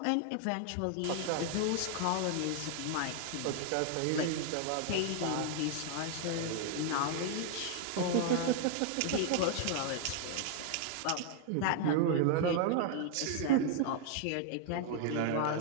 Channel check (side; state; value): both; different; correlation 0.00